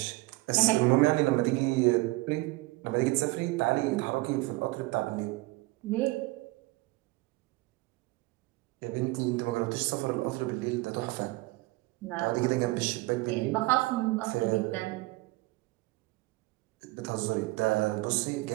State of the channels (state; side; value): quieter; left; 21.6 dB